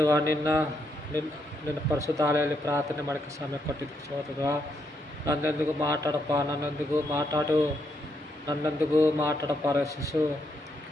ನಿನ್ನ ಪರಿಶುದ್ಧಾಲಯಲ್ಲಿ ಪ್ರಾರ್ಥನೆ ಮಾಡೋಕ್ಕೆ ಸಮಯ ಕೊಟ್ಟಿದ್ದಕ್ಕೆ ಸ್ತೋತ್ರತ್ವ. ನನ್ನೊಂದಿಗೂ ಮಾತಾಡಪ್ಪ ರಕ್ಷಿಸು.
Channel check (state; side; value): normal; both; correlation 0.78